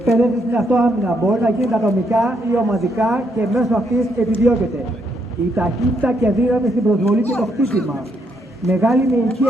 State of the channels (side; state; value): both; normal; correlation 0.75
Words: στην αυτοάμυνα μπορεί να γίνει ατομικά ή ομαδικά και μέσω αυτής επιδιώκεται η ταχύτητα και δύναμη στην προσβολή και το χτύπημα, μεγάλη μυϊκή